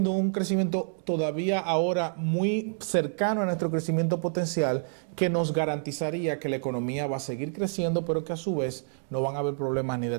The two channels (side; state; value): left; silent; digital silence